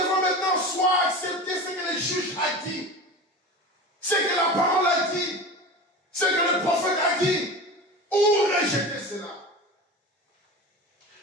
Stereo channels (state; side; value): normal; both; correlation 0.31